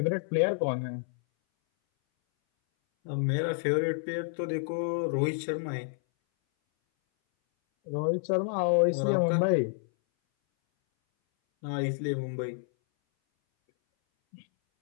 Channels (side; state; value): right; silent; 58 dB below the other